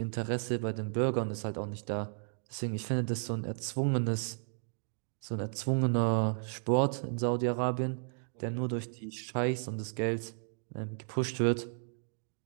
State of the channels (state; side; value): silent; left; digital silence